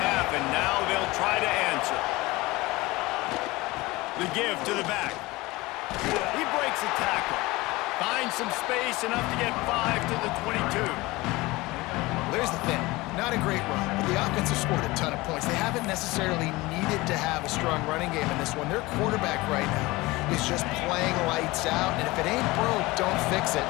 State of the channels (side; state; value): right; quieter; 21.2 dB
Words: and now they'll try to answer. The give to the back. He breaks a tackle. Finds some space, enough to get 5 to the 22. There's the thing. Not a great run, but the offense has scored a ton of points. They haven't necessarily needed to have a strong running game in this one. Their quarterback right now is just playing lights out, and if it ain't broke, don't fix it.